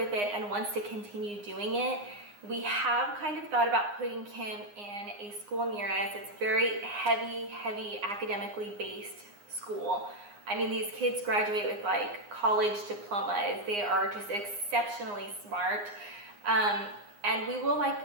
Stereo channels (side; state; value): left; late; 9.7 ms